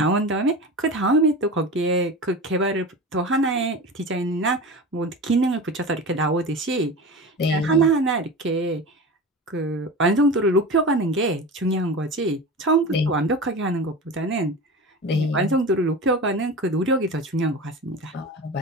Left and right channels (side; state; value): both; normal; correlation 0.30